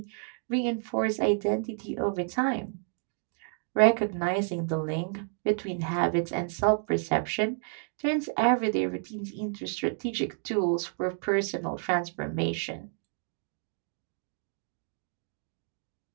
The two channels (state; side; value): silent; left; 55 dB below the other